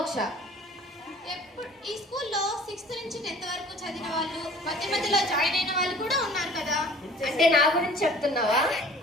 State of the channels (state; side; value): normal; both; correlation 0.49